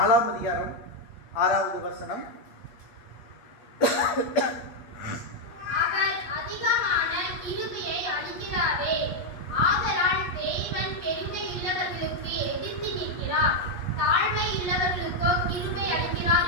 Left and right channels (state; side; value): late; right; 8.5 ms